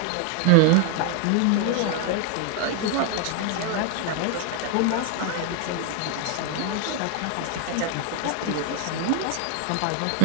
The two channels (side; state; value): both; different; correlation 0.00